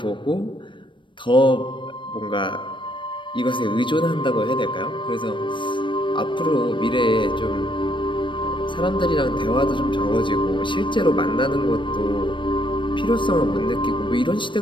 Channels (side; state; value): right; late; 0.24 ms